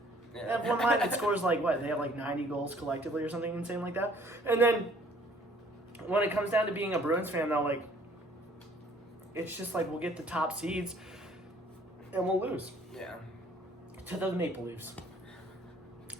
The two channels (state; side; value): normal; both; correlation 0.58